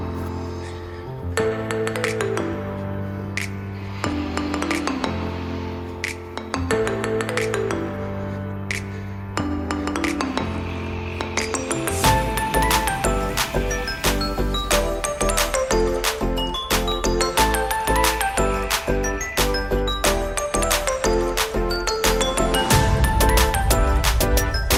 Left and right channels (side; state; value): both; identical; correlation 1.00